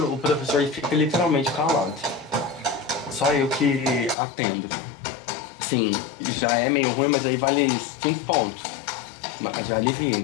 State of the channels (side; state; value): right; drops out; at 4.2 s